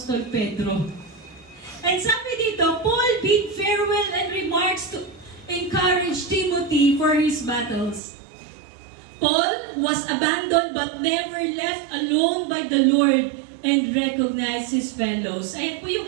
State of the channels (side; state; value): left; drops out; at 8.0 s